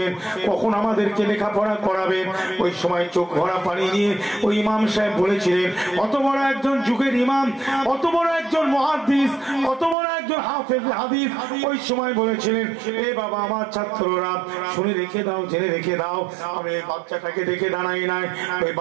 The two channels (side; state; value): left; drops out; at 10.0 s